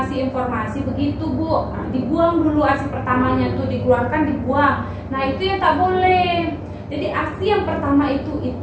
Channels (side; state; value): both; identical; correlation 1.00